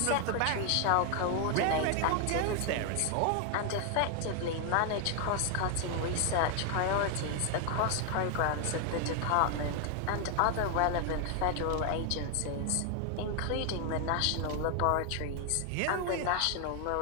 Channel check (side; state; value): both; different; correlation 0.00